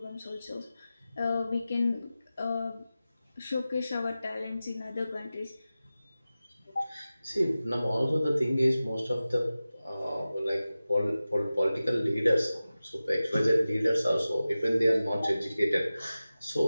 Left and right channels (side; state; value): both; inverted; correlation -0.95